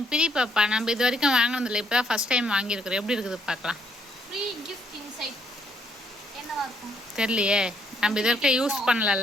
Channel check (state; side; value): normal; both; correlation 0.71